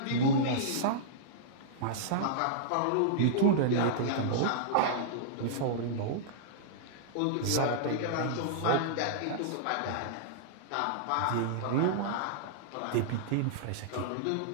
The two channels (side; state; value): both; different; correlation -0.02